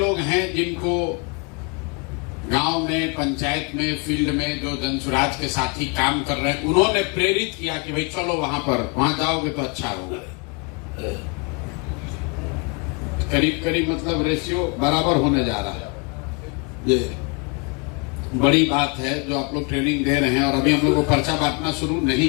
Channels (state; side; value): quieter; right; 30.3 dB